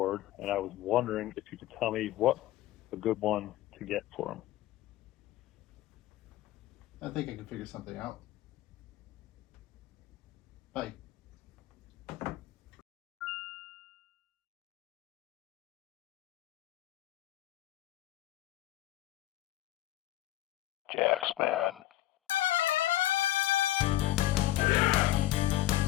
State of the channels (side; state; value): right; quieter; 15.2 dB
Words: and I was wondering if you could tell me what a good one to get for him. I think I can figure something out. Bye. Jaxman.